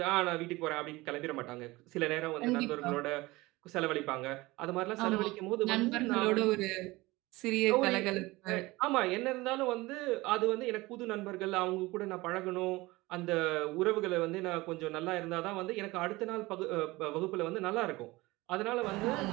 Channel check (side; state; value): left; quieter; 20.9 dB